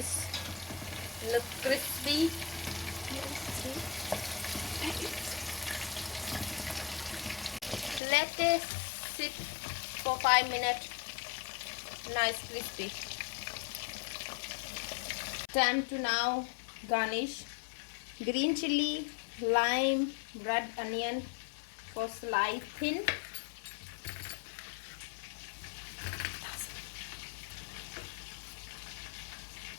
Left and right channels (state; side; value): drops out; right; at 8.0 s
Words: look crispy. Let it sit for 5 minutes. Nice crispy. Time to now garnish. Green chili, lime, red onion for slice thin.